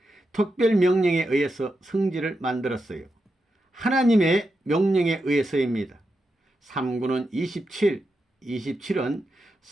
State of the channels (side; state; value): both; normal; correlation 0.87